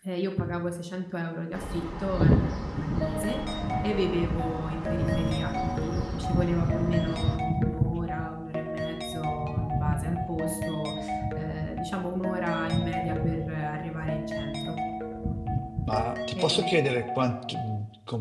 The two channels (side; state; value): both; identical; correlation 1.00